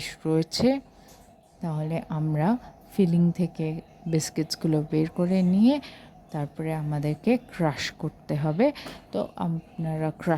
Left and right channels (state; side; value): identical; both; correlation 1.00